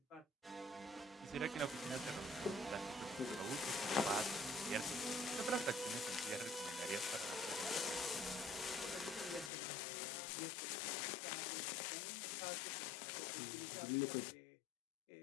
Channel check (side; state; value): right; drops out; at 9.5 s